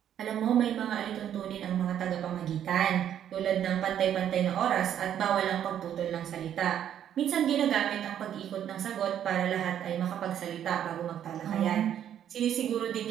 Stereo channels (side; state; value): left; quieter; 10.0 dB